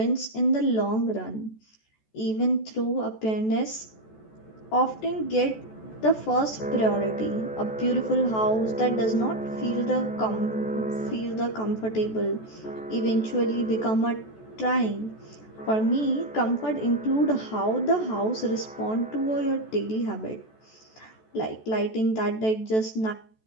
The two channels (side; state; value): right; late; 14 ms